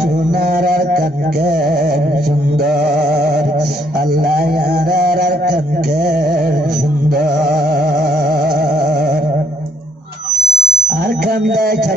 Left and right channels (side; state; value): both; normal; correlation 0.69